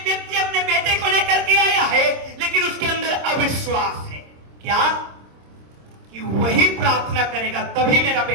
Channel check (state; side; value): late; left; 26 ms